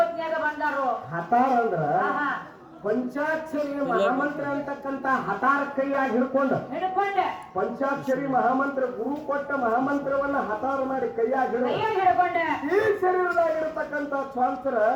ಬಂದಾರು ಹತಾರ ಅಂದ್ರ ಪಂಚಾಕ್ಷರಿ ಮಹಾಮಂತ್ರ ಅಂತಕ್ಕಂತ ಹತಾರ ಕೈಯಾಗಿ ಹಿಡ್ಕೊಂಡೆ ಪಂಚಾಕ್ಷರಿ ಮಹಾಮಂತ್ರ ಗುರು ಕೊಟ್ಟ ಮಹಾಮಂತ್ರವನ್ನ ಹತಾರ ಮಾಡಿ ಕೈಯಾಗಿ ಹಿಡ್ಕೊಂಡೆ ಈ ಶರೀರದಾಗಿರ್ತಕ್ಕಂತ ಸ್ವಾಂತರ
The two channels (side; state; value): both; identical; correlation 1.00